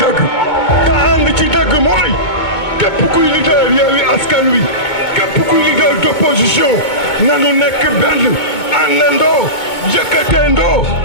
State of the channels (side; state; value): right; late; 2.2 ms